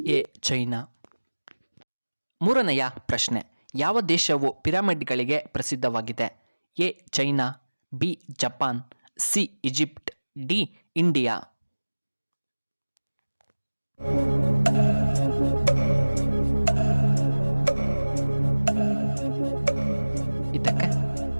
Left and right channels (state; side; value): inverted; both; correlation -1.00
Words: ಎ ಚೈನಾ. ಮೂರನೆಯ ಪ್ರಶ್ನೆ, ಯಾವ ದೇಶವು ಪಿರಮಿಡ್ಗಳಿಗೆ ಪ್ರಸಿದ್ಧವಾಗಿದೆ? A China, B Japan, C Egypt, D India. ಇದಕ್ಕೆ